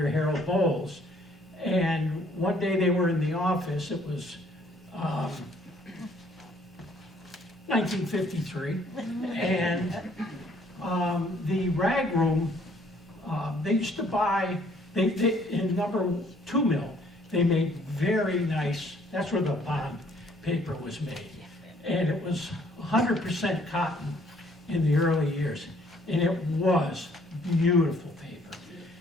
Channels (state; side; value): normal; both; correlation 0.62